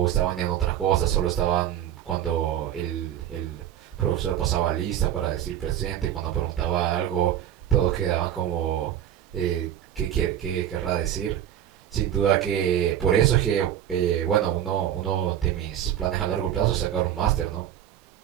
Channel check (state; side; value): quieter; left; 11.0 dB